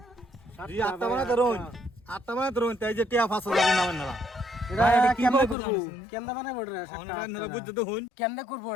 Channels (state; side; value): drops out; right; at 5.6 s